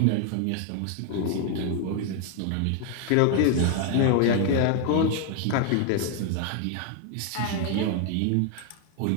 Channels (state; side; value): different; both; correlation 0.00